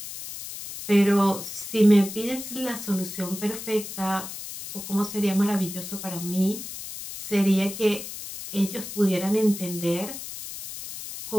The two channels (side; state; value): left; noise; hiss, 10 dB below the sound